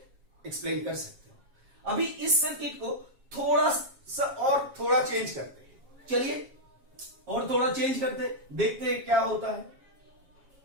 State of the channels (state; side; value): late; left; 7.4 ms